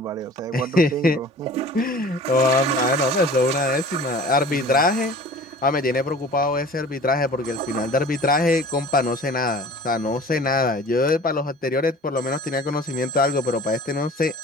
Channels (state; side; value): normal; both; correlation 0.44